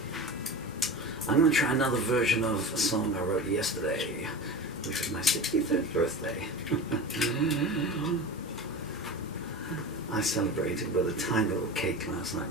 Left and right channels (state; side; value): normal; both; correlation 0.30